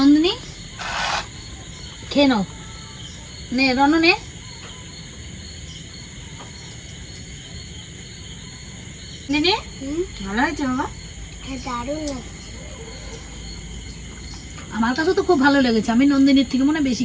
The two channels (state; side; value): identical; both; correlation 1.00